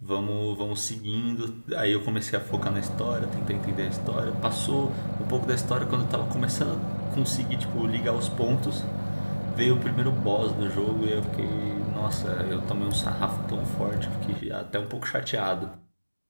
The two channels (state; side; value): inverted; both; correlation -1.00